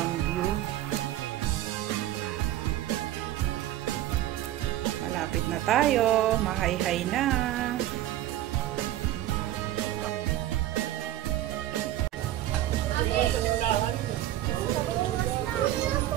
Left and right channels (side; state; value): left; quieter; 13.1 dB